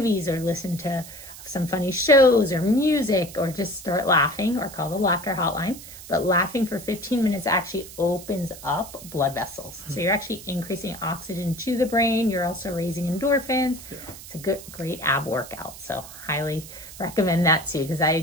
or listen to some funny shows or music, or just start laughing, or call the laughter hotline. But laughing for 15 minutes actually opens up blood vessels. So you're actually increasing oxygen to the brain. You're also raising endorphins. Yeah. It's a great ab workout. So highly recommend that too, because I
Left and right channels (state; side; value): noise; right; hiss, 15 dB below the sound